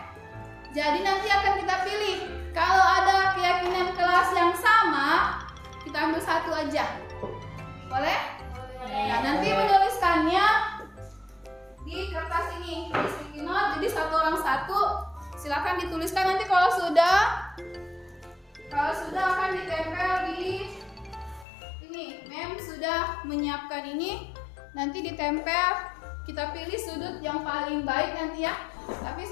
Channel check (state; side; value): drops out; right; at 21.5 s